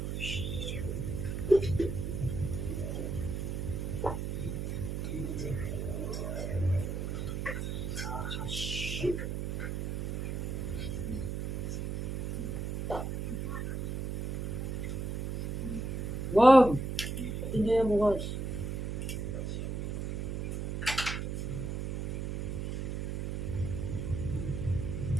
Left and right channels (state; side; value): noise; right; hum, 2 dB below the sound